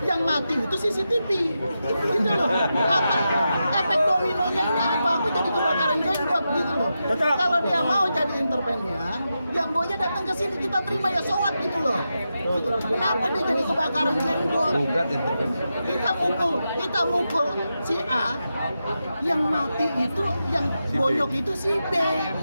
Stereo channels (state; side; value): inverted; both; correlation -0.88